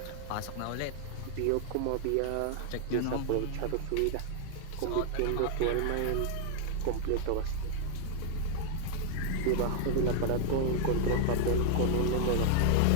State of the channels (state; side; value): different; both; correlation 0.00